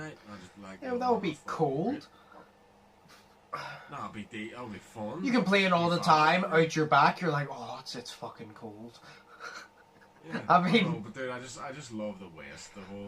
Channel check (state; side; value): identical; both; correlation 1.00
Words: And I just like, Yeah, that would be cold. That would be fun. You can play it all the time out your back. You're like, oh, it's fucking cold. Yeah, I mean, know, but dude, I just love the West, the